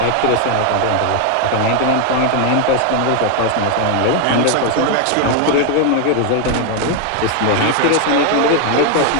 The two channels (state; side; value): different; both; correlation 0.01